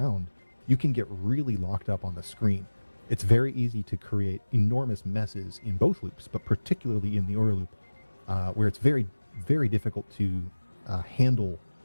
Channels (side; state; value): both; inverted; correlation -1.00